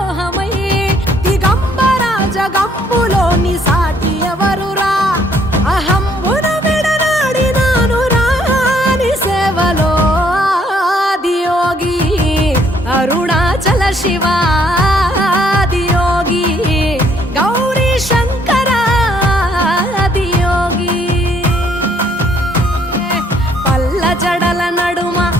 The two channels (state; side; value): normal; both; correlation 0.66